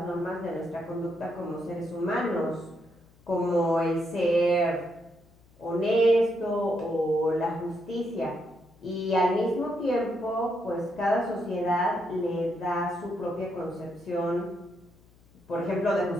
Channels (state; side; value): noise; left; hum, 29 dB below the sound